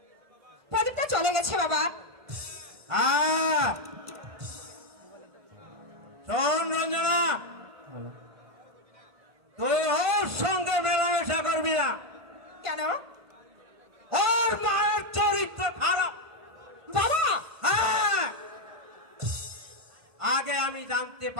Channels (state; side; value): late; left; 1.5 ms